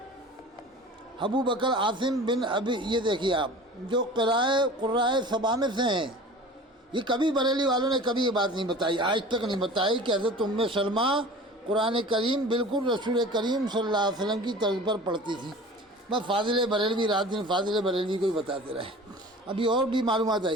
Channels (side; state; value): both; normal; correlation 0.40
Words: ابو بکر عاصم بن ابی، یہ دیکھیے آپ، جو قرائے سبا میں سے ہیں، یہ کبھی بریلی والوں نے کبھی یہ بات نہیں بتائی، آج تک نہیں بتائی کہ حضرت ام سلمہ قرآن کریم بالکل رسول کریم صلی اللہ علیہ وسلم کی طرز پر پڑھتی تھی۔ بس فاضل بریلوی رات دن فاضل بریلوی کو ہی بتاتے رہے۔ ابھی اور بھی معلومات